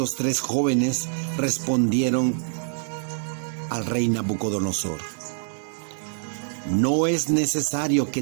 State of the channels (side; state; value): left; silent; digital silence